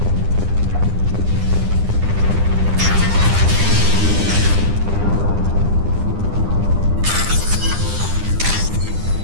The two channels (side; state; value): left; late; 9.9 ms